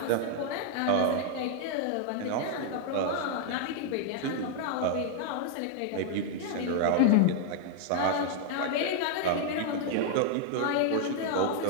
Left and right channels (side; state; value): both; different; correlation 0.00